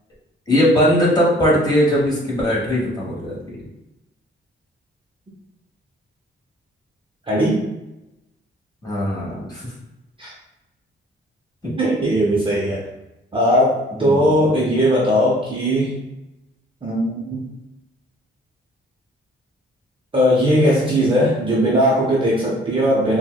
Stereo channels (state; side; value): normal; both; correlation 0.54